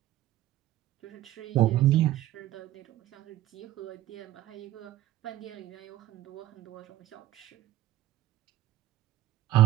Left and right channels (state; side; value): quieter; left; 14.5 dB